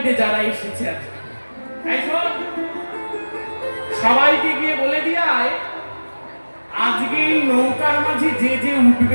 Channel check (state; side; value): inverted; both; correlation -1.00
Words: দে যারা এসেছে আজকে। এই শোন, সবাইকে গিয়ে বলে দিয়ায় আজকে এই নৌকার মাঝে যে যে